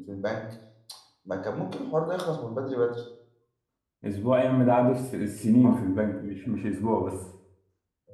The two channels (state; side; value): identical; both; correlation 1.00